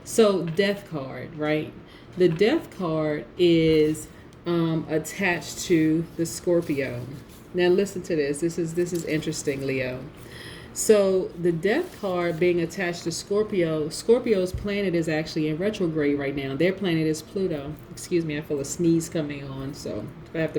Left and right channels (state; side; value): identical; both; correlation 1.00